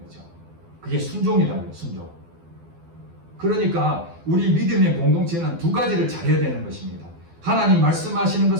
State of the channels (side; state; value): left; late; 12 ms